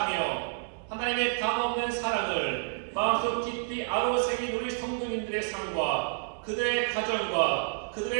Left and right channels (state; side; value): silent; left; 58 dB below the other